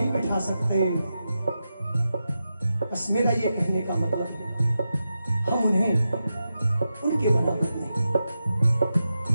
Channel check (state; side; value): inverted; both; correlation -0.89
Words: बिठा सकते। बस मेरा ये कहने का मतलब है हम उन्हें उनके बराबर नहीं।